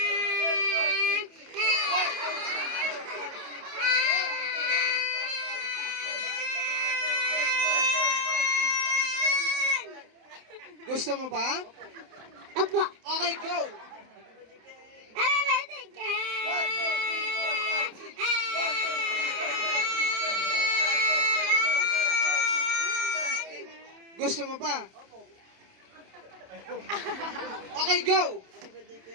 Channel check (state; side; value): late; left; 27 ms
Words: Gusto mo ba? Apo. Okay, go. Happy birthday, Kat! Gusto mo ba? Okay, go.